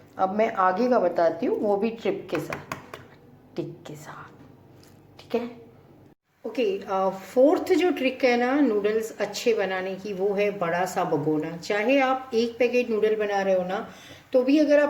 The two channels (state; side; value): identical; both; correlation 1.00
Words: अब मैं आगे का बताती हूँ, वो भी ट्रिप के साथ, टिक के साथ, ठीक है। ओके, फोर्थ जो ट्रिक है ना नूडल्स अच्छे बनाने की, वो है बड़ा सा भगोना। चाहे आप 1 पैकेट नूडल बना रहे हो ना, तो भी अगर